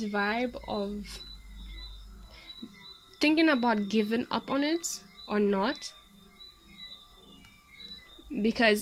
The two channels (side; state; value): both; identical; correlation 1.00